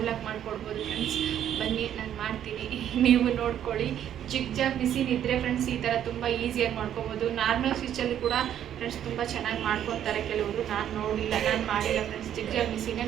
ಮಾಡಿಕೊಡ್ಬೋದು ಫ್ರೆಂಡ್ಸ್. ಬನ್ನಿ, ನಾನು ಮಾಡ್ತೀನಿ, ನೀವು ನೋಡ್ಕೊಳ್ಳಿ. ಜಿಗ್ ಮಿಷಿನ್ ಇದ್ದರೆ ಫ್ರೆಂಡ್ಸ್ ಈ ಥರ ತುಂಬ ಈಸಿಯಾಗಿ ಮಾಡ್ಕೊಬೋದು. ನಾರ್ಮಲ್ ಸ್ಟಿಚಲ್ಲಿ ಕೂಡ ಫ್ರೆಂಡ್ಸ್ ತುಂಬ ಚೆನ್ನಾಗಿ ಮಾಡ್ಕೊತಾರೆ ಕೆಲವರು. ನಾನು ನೋಡಿಲ್ಲ, ನಾನು ಮಾಡಿಲ್ಲ ಫ್ರೆಂಡ್ಸ್. ಜಿಗ್ ಮಿಷಿನೇ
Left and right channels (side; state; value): left; quieter; 10.3 dB